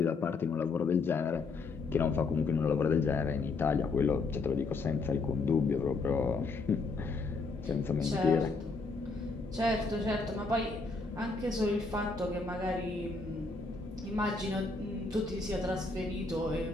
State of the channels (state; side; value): quieter; right; 4.0 dB